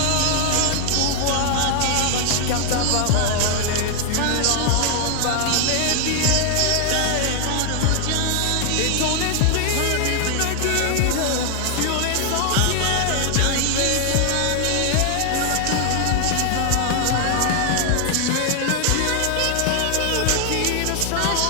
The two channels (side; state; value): both; different; correlation 0.00